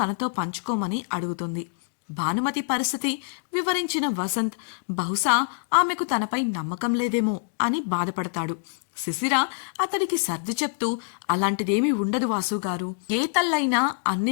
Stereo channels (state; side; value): silent; right; digital silence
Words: తనతో పంచుకోమని అడుగుతుంది. భానుమతి పరిస్థితి వివరించిన వసంత్ బహుశా ఆమెకు తనపై నమ్మకం లేదేమో అని బాధపడతాడు. శిశిర అతడికి సర్ది చెప్తూ, అలాంటిదేమీ ఉండదు వాసుగారు. ఏ తల్లైనా